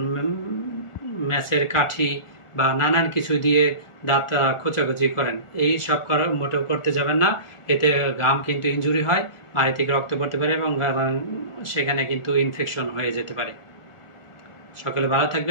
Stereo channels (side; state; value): right; late; 1.4 ms